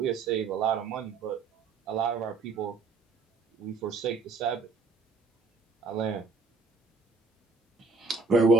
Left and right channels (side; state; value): left; quieter; 4.1 dB